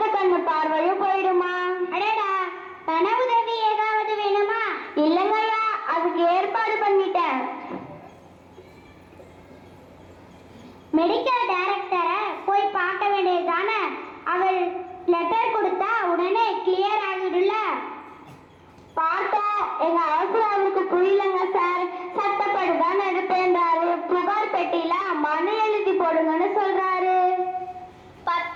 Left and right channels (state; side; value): identical; both; correlation 1.00